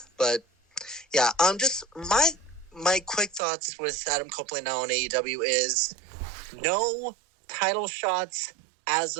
But yeah, just my quick thoughts with Adam Copeland now on AEW is no title shots as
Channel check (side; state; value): left; drops out; at 3.4 s